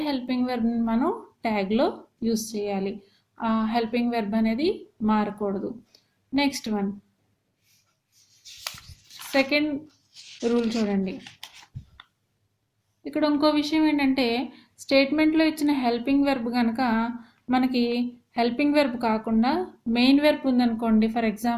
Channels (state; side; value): identical; both; correlation 1.00